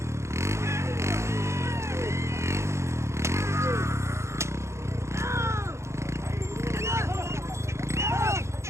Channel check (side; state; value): left; late; 0.13 ms